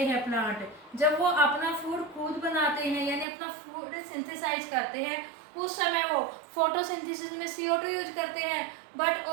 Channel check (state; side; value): drops out; left; at 3.2 s